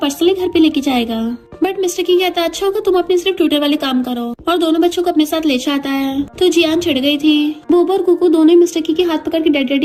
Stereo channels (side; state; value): both; identical; correlation 1.00